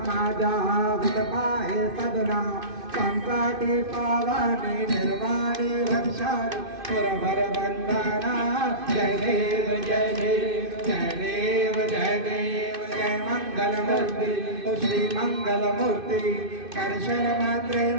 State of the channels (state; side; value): late; left; 2.5 ms